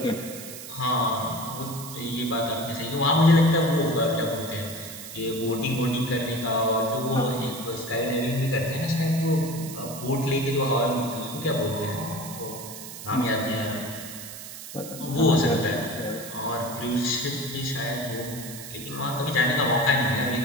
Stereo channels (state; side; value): noise; right; hiss, 12 dB below the sound